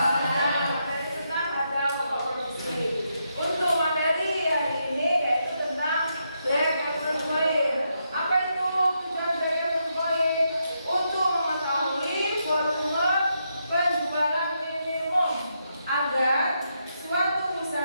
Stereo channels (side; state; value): both; inverted; correlation -0.81